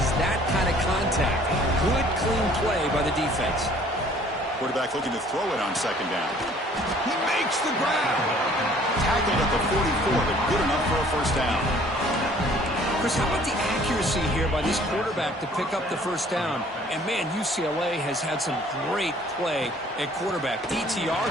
that kind of contact. Good, clean play by the defense. Quarterback looking to throw it on second down. He makes the grab. Tackled at the 44, but good enough for a first down. Chris, how about the accuracy here by this quarterback to pick up the first down? And, man, UCLA has had some great play at quarterback. DTR,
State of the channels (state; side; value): normal; both; correlation 0.55